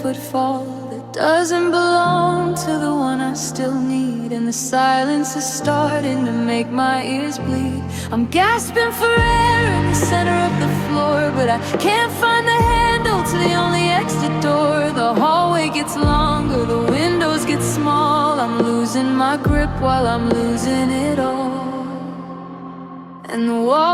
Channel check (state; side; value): identical; both; correlation 1.00